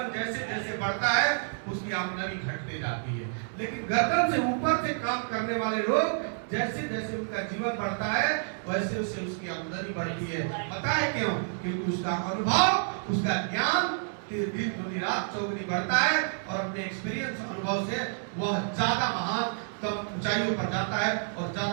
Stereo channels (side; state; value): left; silent; digital silence